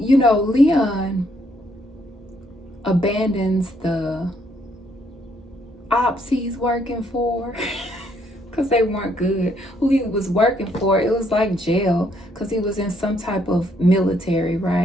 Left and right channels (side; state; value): both; normal; correlation 0.70